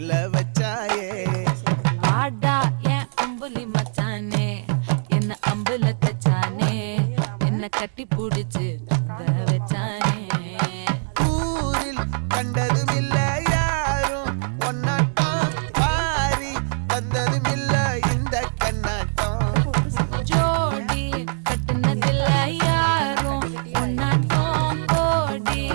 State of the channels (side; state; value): left; silent; digital silence